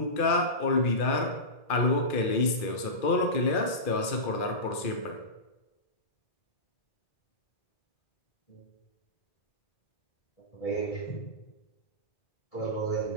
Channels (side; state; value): right; late; 2.4 ms